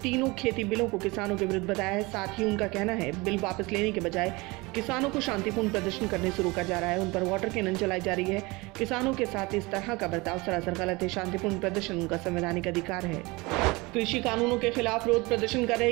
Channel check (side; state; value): left; quieter; 24.1 dB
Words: खेती बिलों को किसानों के विरुद्ध बताया है। साथ ही उनका कहना है, बिल वापस लेने के बजाय किसानों को शांतिपूर्ण प्रदर्शन करने से रोका जा रहा है, उन पर वाटर कैनन चलाई जा रही है। किसानों के साथ इस तरह का बर्ताव सरासर गलत है। शांतिपूर्ण प्रदर्शन उनका संवैधानिक अधिकार है। कृषि कानूनों के खिलाफ विरोध प्रदर्शन कर रहे